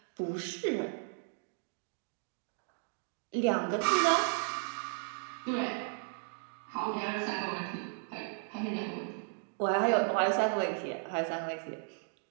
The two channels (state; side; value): silent; left; 54 dB below the other